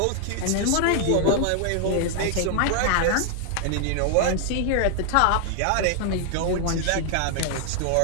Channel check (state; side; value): different; both; correlation 0.00